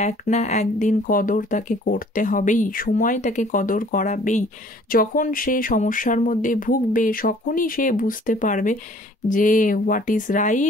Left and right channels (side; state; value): both; normal; correlation 0.55